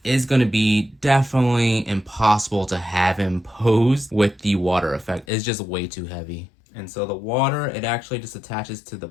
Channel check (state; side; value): drops out; right; at 5.2 s